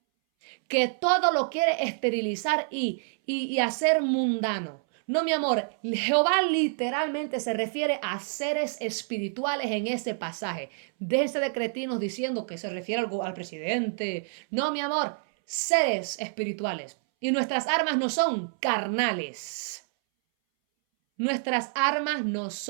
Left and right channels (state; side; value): silent; left; 60 dB below the other